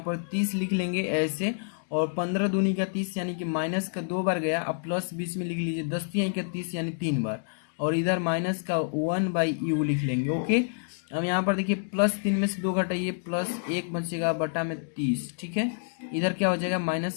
30 लिख लेंगे ऐसे, और 15 दूनी का 30 यानी कि माइनस का 2 बार गया, अब प्लस बीच में लिख लीजिए, 10 तिहाई का 30 यानी 3 बार, और इधर माइनस का 1/u लिख लेंगे, ओके। अब यहाँ पर देखिए +3 में से 2 घटाइए, +1 बचेगा बटा में 30, ठीक है। इधर क्या हो जाएगा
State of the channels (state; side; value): silent; right; digital silence